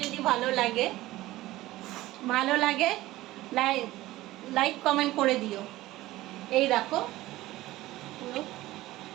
যদি ভালো লাগে লাইক কমেন্ট করে দিও। এই দেখো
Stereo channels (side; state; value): left; quieter; 17.1 dB